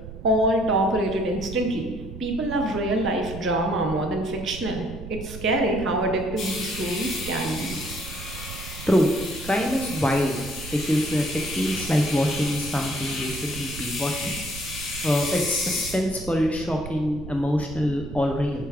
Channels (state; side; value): noise; right; rumble, 11 dB below the sound